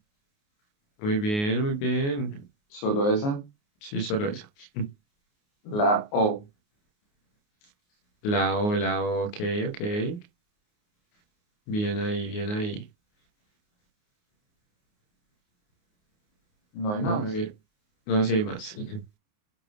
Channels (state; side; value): late; right; 29 ms